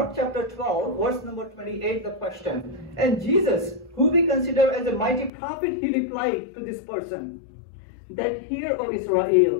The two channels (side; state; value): right; drops out; at 5.3 s